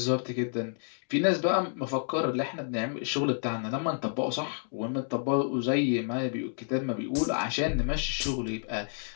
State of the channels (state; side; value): silent; right; digital silence